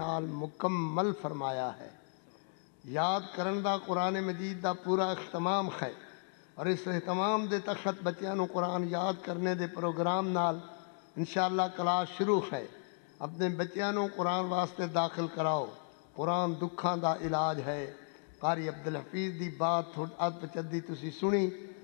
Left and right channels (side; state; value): right; silent; 55 dB below the other